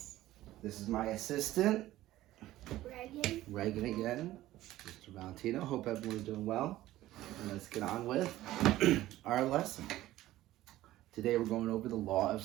This is my assistant, Reagan again, Mr. Valentino. Hope everyone's doing well. And let's get on with our lesson. Today we're going over the law of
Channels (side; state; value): left; quieter; 15.4 dB